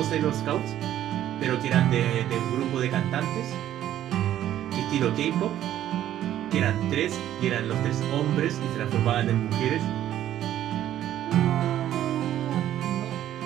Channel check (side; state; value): left; quieter; 12.0 dB